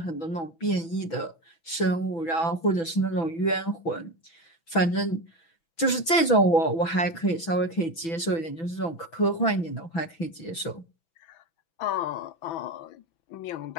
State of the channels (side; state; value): right; late; 6.0 ms